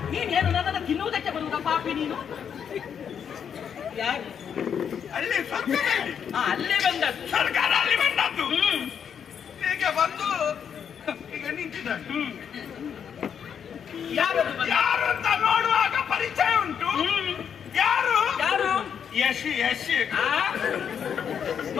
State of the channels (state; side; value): quieter; right; 7.8 dB